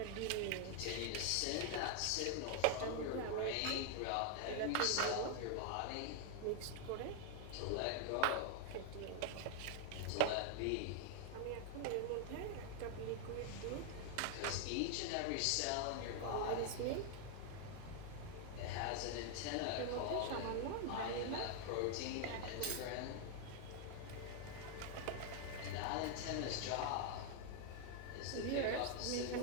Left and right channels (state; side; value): different; both; correlation 0.00